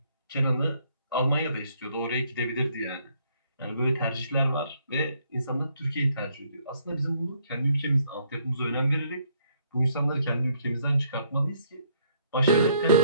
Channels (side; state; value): both; inverted; correlation -0.68